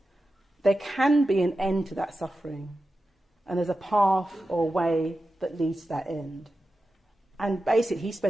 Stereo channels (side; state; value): both; normal; correlation 0.92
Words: There can be an end to that suffering, and there's a path or way that leads to that end. And basically he